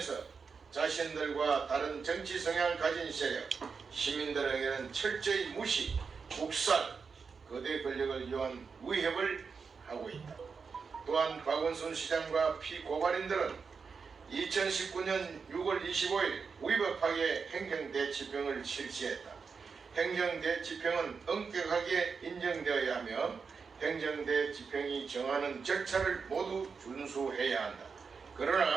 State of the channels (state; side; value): quieter; left; 5.4 dB